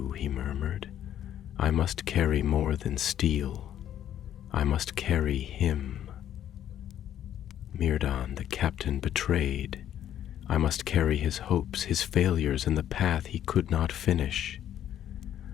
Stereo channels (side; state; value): right; quieter; 10.9 dB